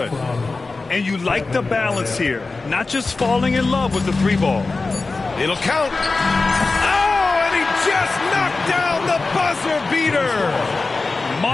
And you like the balance here, not just falling in love with the 3-ball. It'll count. Oh, and he just knocked down the buzzer beater.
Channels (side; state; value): right; quieter; 3.7 dB